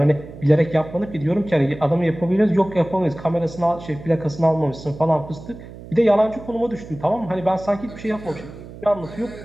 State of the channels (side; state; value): right; noise; hum, 15 dB below the sound